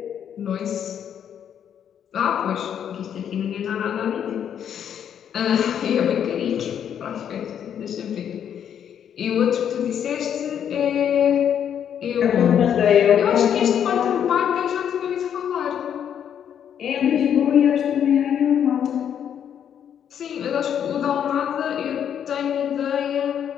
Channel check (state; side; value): quieter; right; 8.9 dB